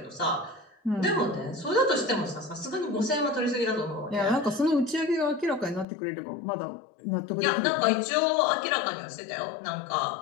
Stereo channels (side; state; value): right; drops out; at 5.9 s